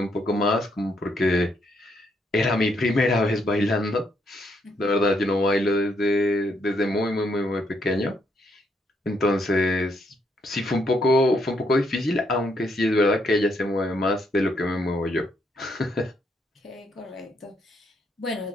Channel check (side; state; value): both; normal; correlation 0.75